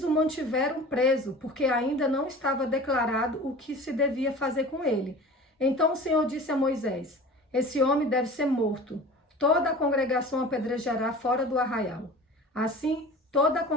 o mantiveram preso, porque ainda não estava declarado o que se devia fazer com ele. Então o Senhor disse a Moisés: esse homem deve ser morto. Toda a congregação apedrejará fora do arraial. Assim, toda a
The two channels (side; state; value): both; normal; correlation 0.39